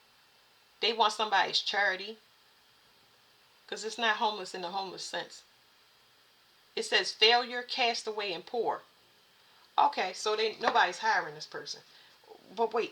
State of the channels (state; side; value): identical; both; correlation 1.00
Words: they want somebody's charity. Because it's not homeless in the homeless sense. It says failure, castaway, and poor. Okay, so nobody's hiring this person. But